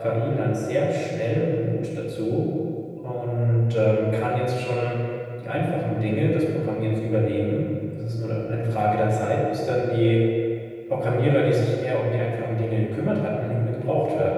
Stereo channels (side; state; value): both; identical; correlation 1.00